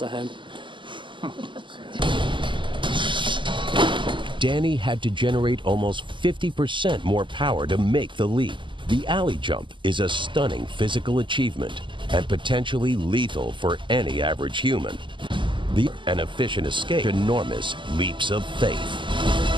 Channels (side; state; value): left; late; 0.24 ms